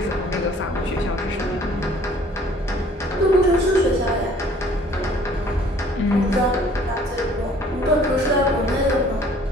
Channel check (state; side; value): normal; both; correlation 0.55